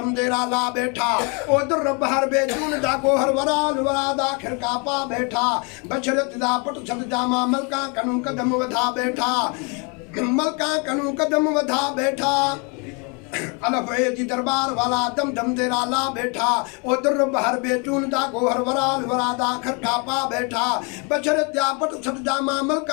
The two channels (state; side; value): quieter; right; 33.4 dB